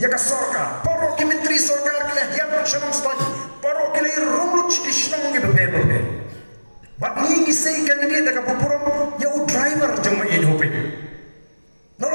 ke sarkar paro ki menteri sarkar ke ya shanam stone paro ki le rumlu chishnong ge bebe bat ni sei candidate ka pupurom ya u driver jong in hope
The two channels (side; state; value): both; inverted; correlation -1.00